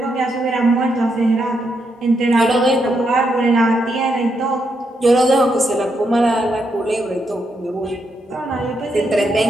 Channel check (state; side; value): normal; both; correlation 0.80